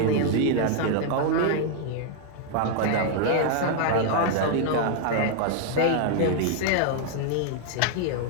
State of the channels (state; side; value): different; both; correlation 0.00